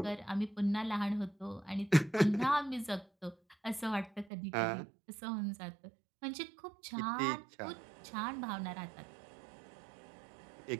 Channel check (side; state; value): left; drops out; at 4.3 s